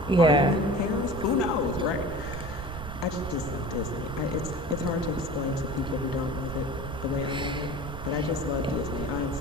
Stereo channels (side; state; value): right; noise; rumble, 8 dB below the sound